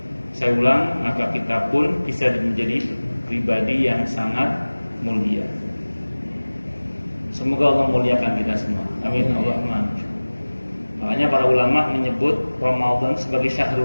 Saya ulang, maka kita pun bisa menjadi pribadi yang sangat mulia. Semoga Allah muliakan kita semua. Amin. Allahumma. Makanya para ulama menyebut Ramadan sebagai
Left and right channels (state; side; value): inverted; both; correlation -1.00